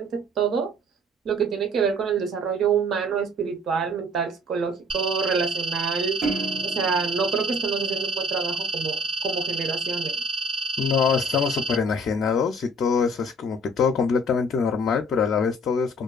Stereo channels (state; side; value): normal; both; correlation 0.54